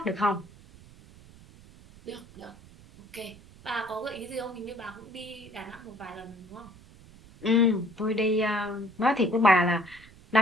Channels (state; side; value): noise; right; rumble, 22 dB below the sound